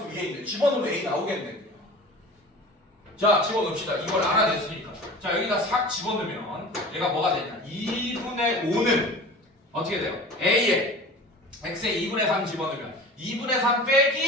위에 있는데 집어넣으면 A 나오겠네. 자, 집어넣읍시다. 이걸 알아냈으니까. 자, 여기다 싹 집어넣으면 얘가 뭐가 되냐? 2분의 5는 어떻게 돼요? A에 X에 2분의 3 집어넣으면 2분의 3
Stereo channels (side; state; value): both; normal; correlation 0.38